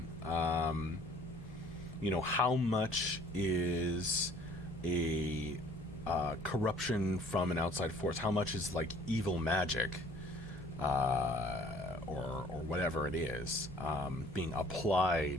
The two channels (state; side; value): normal; both; correlation 0.55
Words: How much is a corruption from an outside force? How much is like evil magic or whatever it is being